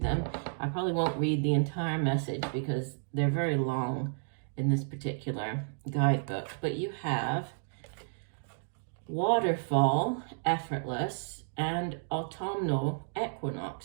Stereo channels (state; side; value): silent; left; digital silence